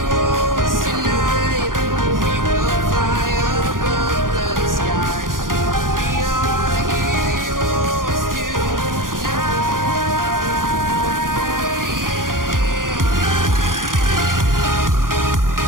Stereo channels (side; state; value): left; late; 0.90 ms